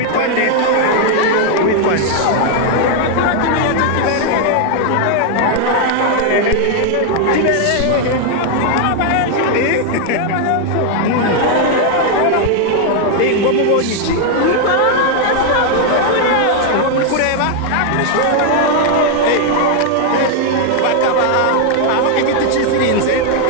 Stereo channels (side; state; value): both; different; correlation 0.00